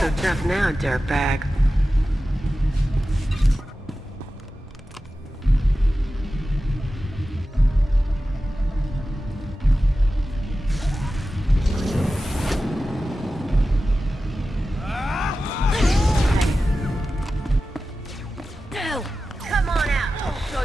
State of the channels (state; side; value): normal; both; correlation 0.94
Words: Tough now, dirtbag. Come on out, I'll show